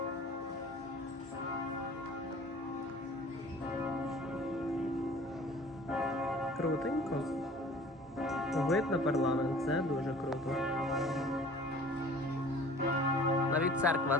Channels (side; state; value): both; normal; correlation 0.47